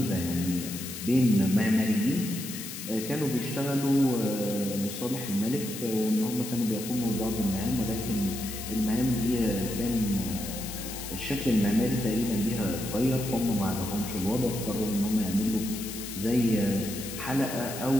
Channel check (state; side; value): noise; left; hiss, 9 dB below the sound